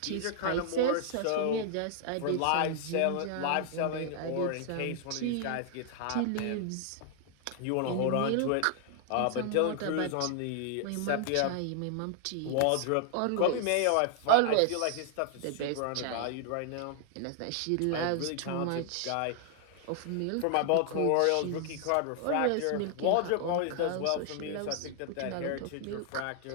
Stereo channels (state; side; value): different; both; correlation 0.00